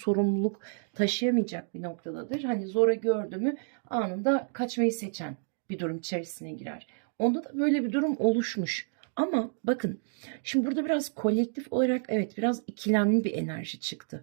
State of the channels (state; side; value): silent; left; digital silence